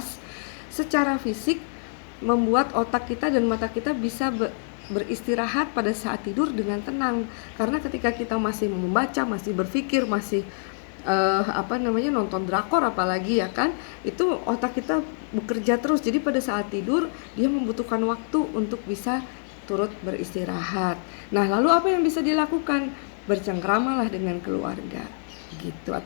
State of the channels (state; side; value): silent; right; digital silence